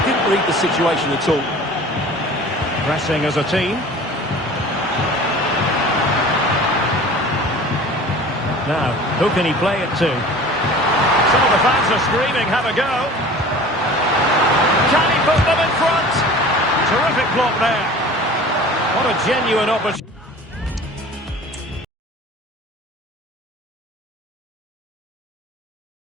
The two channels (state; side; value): normal; both; correlation 0.42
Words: didn't read the situation at all. Pressing as a team. Now, who can he play it to? Some of the fans are screaming, have a go. Can he put them in front? Terrific block there. What a genuine opportunity.